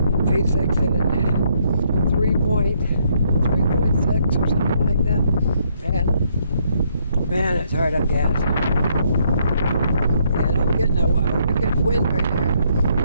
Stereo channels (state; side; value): inverted; both; correlation -0.71